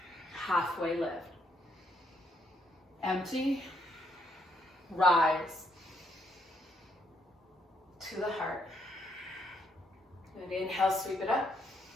Halfway lift. Empty. Rise. To the heart. And inhale, sweep it up.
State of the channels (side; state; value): both; normal; correlation 0.73